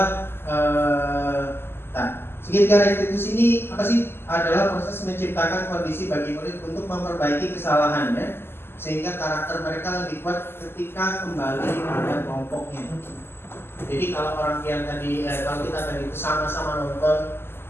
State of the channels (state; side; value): late; right; 0.11 ms